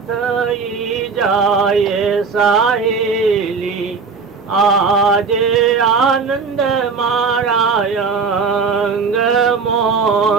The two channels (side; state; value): left; quieter; 5.1 dB